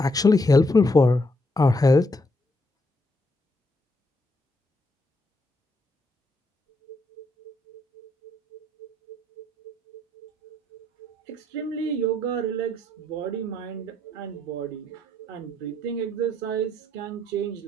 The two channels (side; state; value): both; normal; correlation 0.74